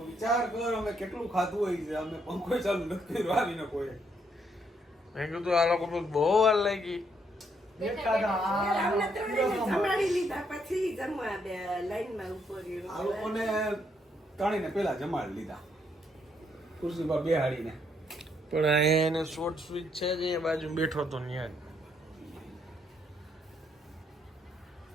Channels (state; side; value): normal; both; correlation 0.73